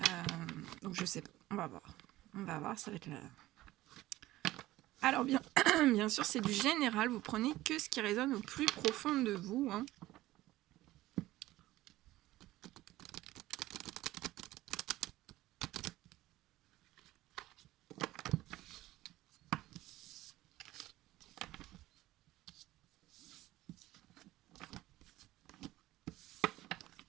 Donc, je sais pas, on va voir, ça va être là. Alors, bien sûr, c'est du général, vous prenez que ce qui résonne au plus profond de vous, hein.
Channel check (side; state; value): left; quieter; 16.6 dB